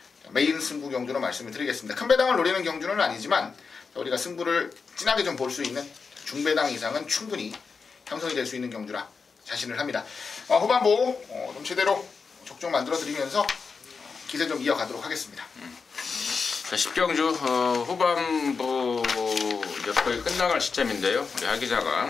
메인 승부 경주로 말씀을 드리겠습니다. 큰 배당을 노리는 경주는 아니지만 우리가 승부를 진하게 좀 볼 수 있는 중배당 이상은 충분히 형성이 될 수 있는 경주라 자신을 합니다. 후반부 좀 제대로 적중 만들어 드리면서 기세 좀 이어가도록 하겠습니다. 자, 10경주 후반부 이제 거의 끝나갈 시점인데요. 우리 하기자가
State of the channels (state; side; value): quieter; right; 5.1 dB